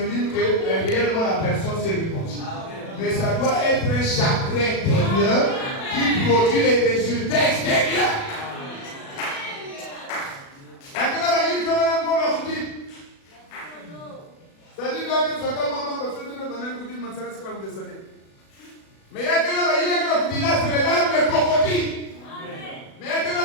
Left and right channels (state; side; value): late; right; 37 ms